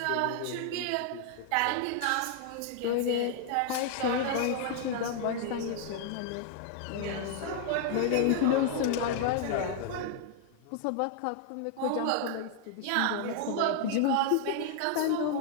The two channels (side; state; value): both; different; correlation 0.00